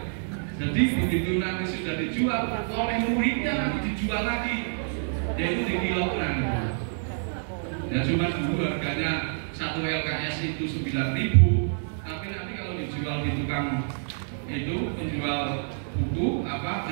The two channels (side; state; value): left; silent; digital silence